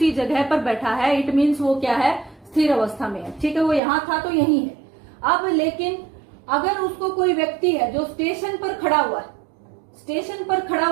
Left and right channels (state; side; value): drops out; left; at 3.8 s